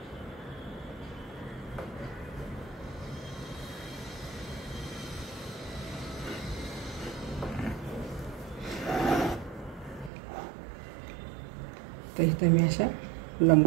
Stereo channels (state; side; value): drops out; left; at 10.1 s